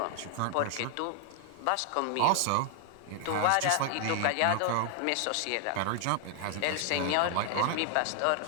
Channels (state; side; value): different; both; correlation 0.00